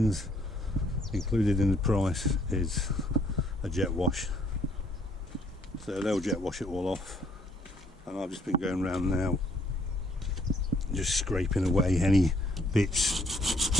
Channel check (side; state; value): both; normal; correlation 0.65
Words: Included in the price is a jet wash. So they'll jet wash it all off. And I've just been going around now, just scraping away any bits,